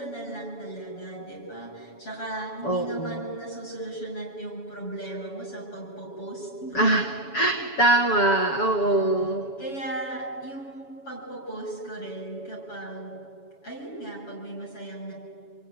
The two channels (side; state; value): right; late; 7.1 ms